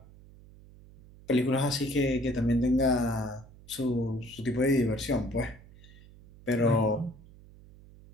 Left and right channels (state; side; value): noise; right; hum, 22 dB below the sound